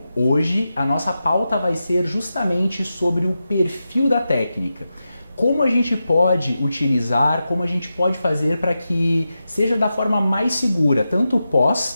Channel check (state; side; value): inverted; both; correlation -0.90